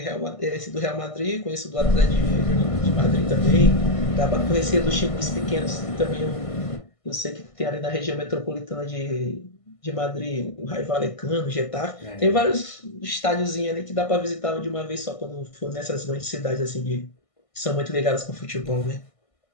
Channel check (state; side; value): late; right; 1.5 ms